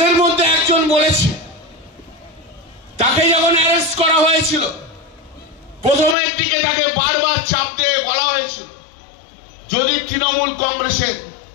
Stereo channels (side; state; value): right; drops out; at 6.2 s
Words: মধ্যে একজন বলেছে, তাকে যখন অ্যারেস্ট করা হয়েছিল প্রথমের দিকে তাকে বারবার চাপ দিয়ে বলা হয়েছিল, যদি তৃণমূল কংগ্রেসের